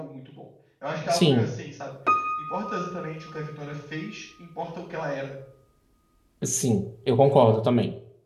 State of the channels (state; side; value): identical; both; correlation 1.00